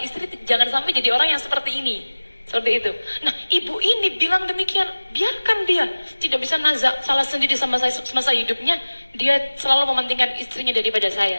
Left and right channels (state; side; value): inverted; both; correlation -1.00